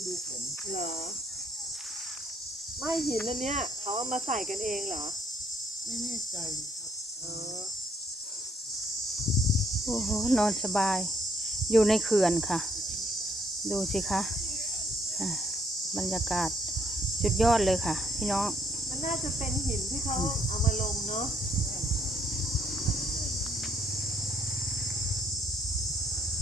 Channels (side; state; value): both; normal; correlation 0.68